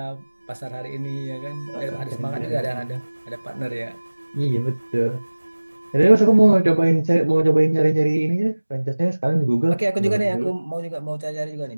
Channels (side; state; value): both; inverted; correlation -1.00